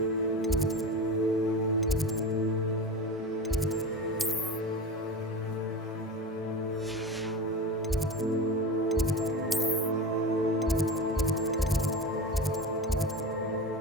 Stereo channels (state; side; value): normal; both; correlation 0.28